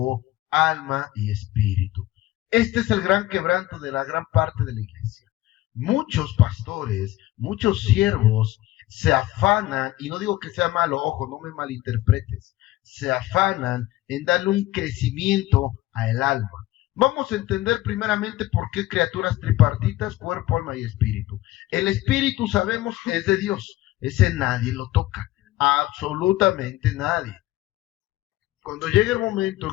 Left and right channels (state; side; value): quieter; right; 16.6 dB